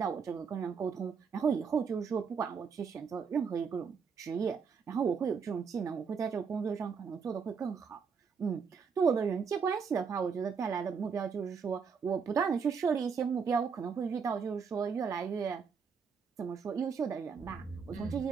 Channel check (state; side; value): quieter; left; 6.0 dB